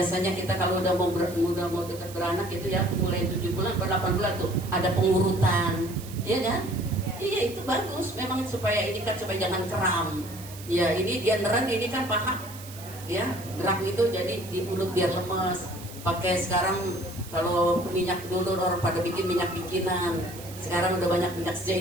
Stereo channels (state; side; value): noise; right; hiss, 16 dB below the sound